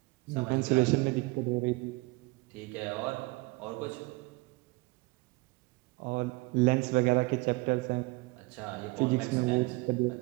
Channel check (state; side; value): quieter; left; 24.2 dB